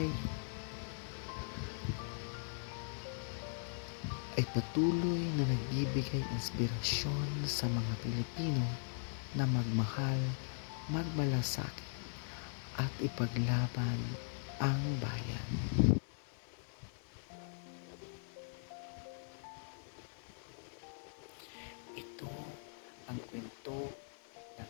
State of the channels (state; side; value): silent; right; digital silence